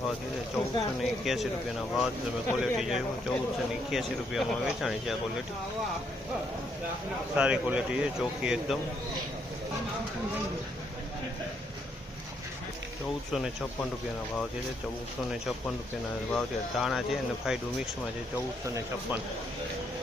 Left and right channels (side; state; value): both; normal; correlation 0.74